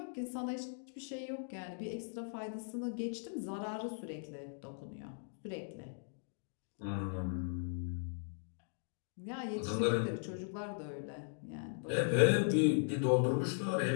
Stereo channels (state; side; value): silent; right; digital silence